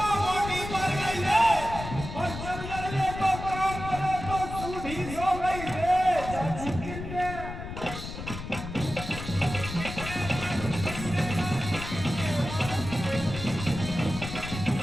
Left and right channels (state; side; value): noise; left; rumble, 8 dB below the sound